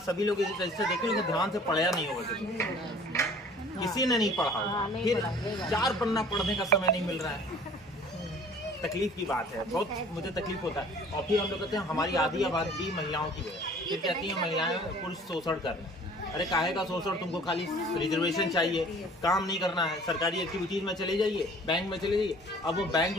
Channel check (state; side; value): normal; both; correlation 0.50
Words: सभी लोग इसे रजिस्टर देखें लेकिन ध्यान से पढ़ा नहीं होगा, किसी ने नहीं पढ़ा होगा, फिर 4 पन्ना पढ़ने का समय नहीं मिल रहा है। तकलीफ की बात है, बहुत मुझे तकलीफ होता है। और फिर हम लोग कहते हैं हमारी आधी आबादी महिलाओं की है, फिर कहती हैं महिलाएं पुरुष शोषण कर रहे हैं। अरे काहे का शोषण, तुमको खाली रिजर्वेशन चाहिए, काम नहीं करना है, सरकारी एक्टिविटीज में चले जाइए, बैंक में चले जाइए। अब वो बैंक